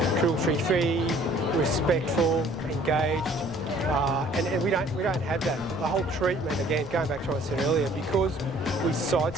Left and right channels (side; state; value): left; noise; rumble, 16 dB below the sound